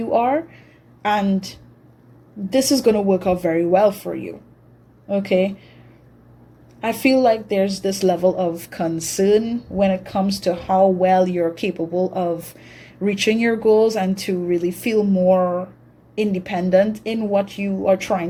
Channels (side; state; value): both; identical; correlation 1.00